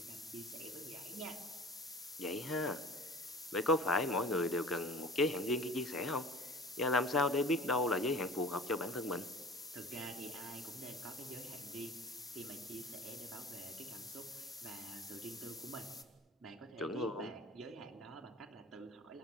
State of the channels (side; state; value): both; normal; correlation 0.42